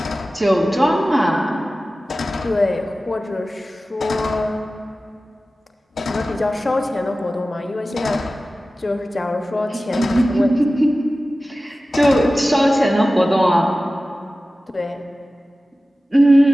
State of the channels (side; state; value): both; normal; correlation 0.96